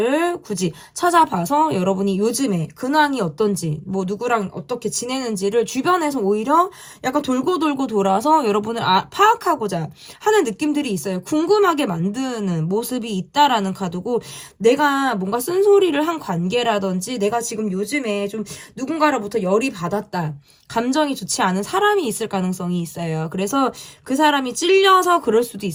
굳이 찾아봐서 여러분이 요즘에 근황이 어떤지 뭐 누구랑 어떻게 지내는지를 주변에서 오히려 약간 돌고 돌아서 여러분을 파악하고자 하는 느낌들이 있어요. 궁금하게 만드는 모습이 있다라는 카드고 내가 뭔가 쓴소리를 한 관계라든지 내가 지금 요즘에 좀 누군가로부터 열이 받았다. 감정이 좋지 않은 사람이 있을 가능성이 있어요. 그래서 그 사람이 찔려서 그럴 수도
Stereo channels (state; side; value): identical; both; correlation 1.00